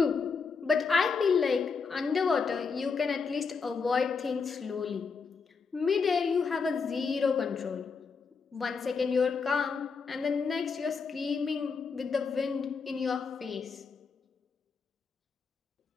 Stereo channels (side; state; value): right; quieter; 5.2 dB